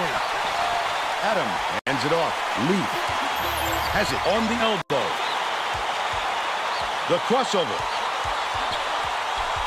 Adam hands it off. Leaf has it on the elbow. The crossover.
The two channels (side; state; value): both; identical; correlation 1.00